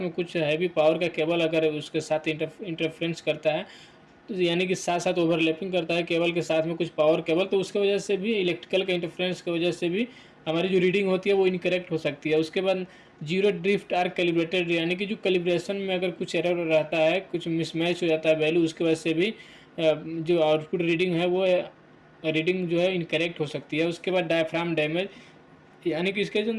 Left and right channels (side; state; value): both; identical; correlation 1.00